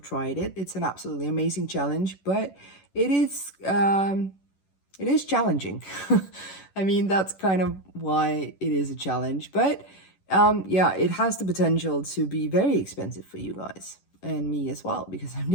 it, it's an absolutely amazing challenge, but it is challenging. I mean, that's kind of why it is a challenge. But yeah, it has the potential to be very expensive for you guys and me as well, because I'm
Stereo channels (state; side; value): late; right; 11 ms